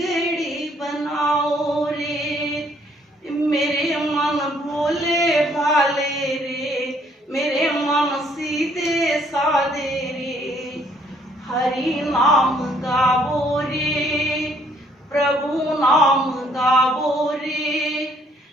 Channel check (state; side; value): normal; both; correlation 0.64